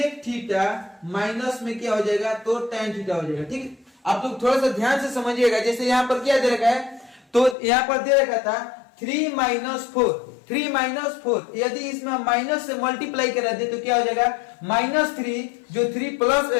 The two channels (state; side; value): drops out; right; at 7.6 s